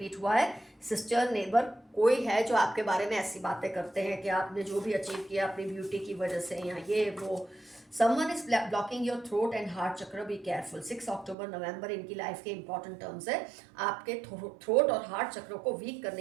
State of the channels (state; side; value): drops out; left; at 11.4 s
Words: हुआ है। सिस्टर, नेबर कोई है जो आपके बारे में ऐसी बातें करते हैं कि आपने जो भी अचीव किया अपनी ब्यूटी की वजह से या ये वो। Someone is blocking your throat and heart चक्र, बी केयरफुल। 6 अक्टूबर नवंबर इनकी लाइफ के इंपॉर्टेंट टर्म्स है। आपके थ्रोट और हार्ट चक्रों को वीक